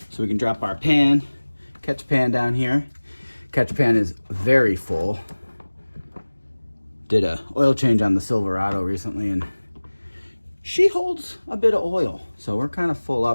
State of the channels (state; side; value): inverted; both; correlation -1.00